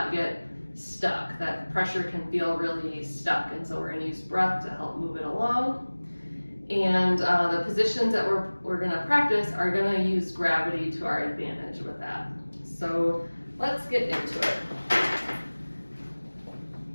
get stuck. That pressure can feel really stuck, and so we're going to use breath to help move it along. And the positions that we're going to practice are going to use gravity to our advantage with that. So let's get into it.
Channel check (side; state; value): both; inverted; correlation -1.00